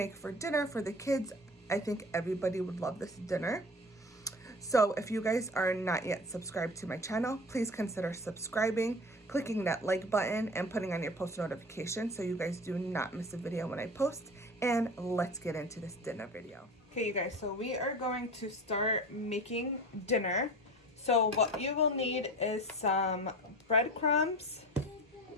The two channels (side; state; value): both; normal; correlation 0.36